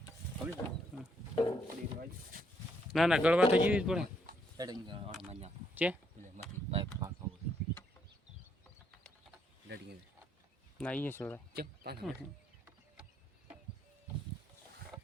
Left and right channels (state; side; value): normal; both; correlation 0.72